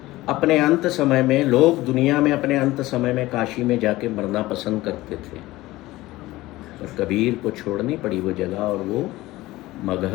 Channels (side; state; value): right; quieter; 18.0 dB